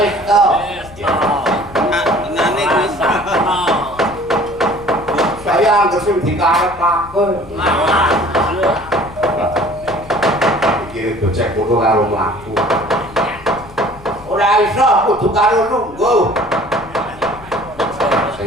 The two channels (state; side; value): noise; left; rumble, 19 dB below the sound